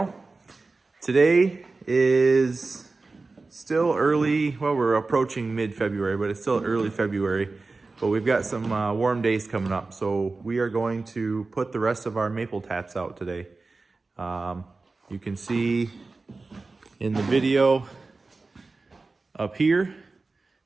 Today is still early, well we're approaching mid-February, but it's still early February. But we've got some warm days coming up, so we are going to put the rest of our maple taps out today. You can see in the video up here,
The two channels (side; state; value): left; quieter; 3.7 dB